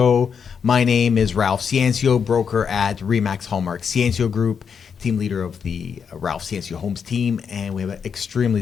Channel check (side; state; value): right; quieter; 6.7 dB